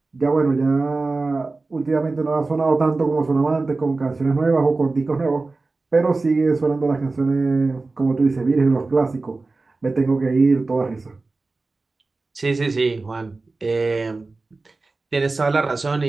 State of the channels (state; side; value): quieter; left; 3.6 dB